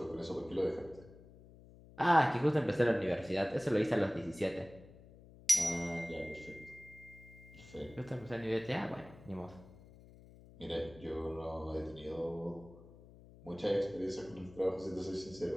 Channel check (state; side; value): noise; left; hum, 20 dB below the sound